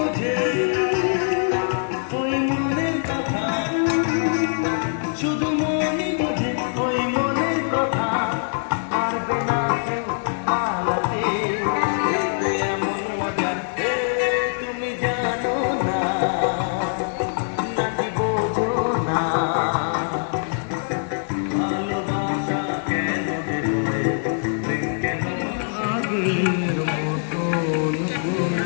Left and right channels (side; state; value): right; silent; digital silence